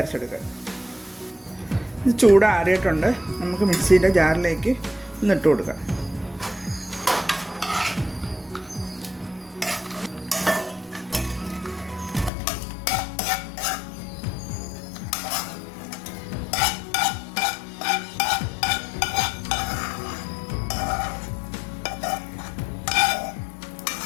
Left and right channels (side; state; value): right; drops out; at 12.3 s